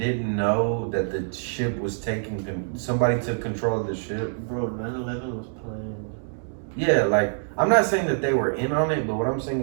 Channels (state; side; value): silent; left; digital silence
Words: know that the ship was taking, somebody took control of the ship? Bro, 9/11 was planned. Yeah, like, I'm not saying that they were in on it, but what I'm saying